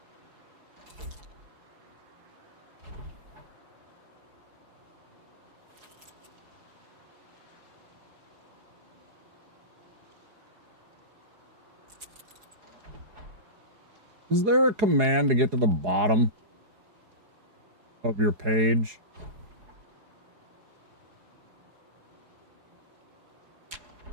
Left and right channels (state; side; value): late; left; 4.8 ms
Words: Is there a command to get to the bottom of your page?